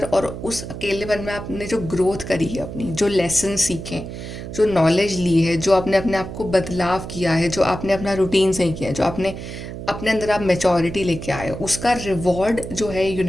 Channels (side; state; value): right; noise; hum, 9 dB below the sound